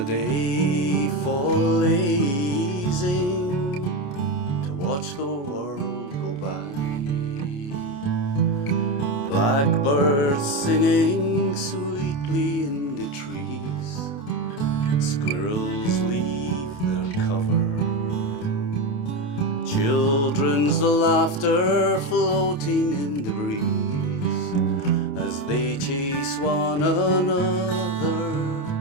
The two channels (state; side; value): late; right; 28 ms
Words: day for lazing, to watch the world go by. Blackbirds singing sweetly in the trees, squirrels leave their cover, children's laughter floating in the breeze as they chase one another.